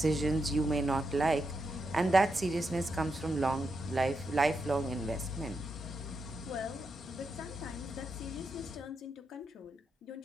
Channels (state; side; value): normal; both; correlation 0.84